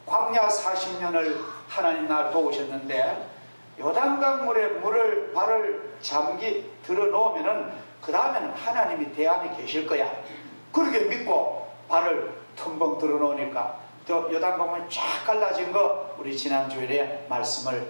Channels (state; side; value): inverted; both; correlation -1.00